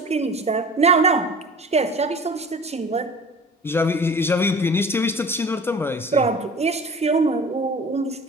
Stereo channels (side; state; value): both; normal; correlation 0.40